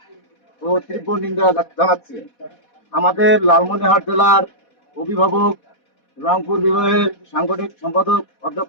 ও তীব্র নিন্দা জানাচ্ছি। আমাদের লালমনিরহাট জেলার অভিভাবক রংপুর বিভাগের সাংগঠনিক সম্পাদক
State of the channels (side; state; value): right; late; 4.1 ms